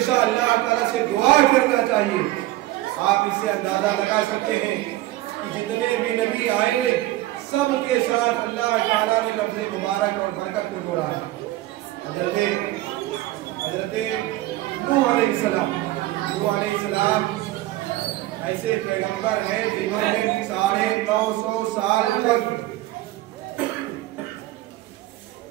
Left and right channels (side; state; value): left; quieter; 16.8 dB